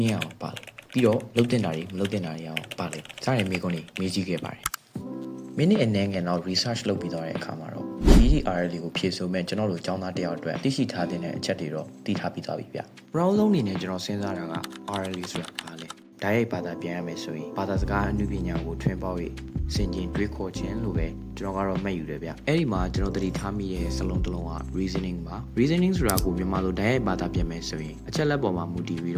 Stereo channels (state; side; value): identical; both; correlation 1.00